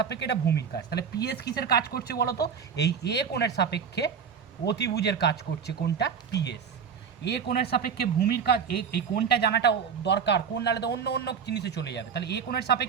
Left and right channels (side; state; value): left; quieter; 6.7 dB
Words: এটা ভূমির কাজ। তাহলে পিএস কিসের কাজ করছে বলো তো, এই এ কোণের সাপেক্ষে অতিভুজের কাজ করছে কোনটা, পিএস। এ কোণের সাপেক্ষে ভূমির কাজ, এই কোণটা জানাটা দরকার, কোণ নাহলে তো অন্য জিনিসে চলে যাবে। তাহলে এ কোণের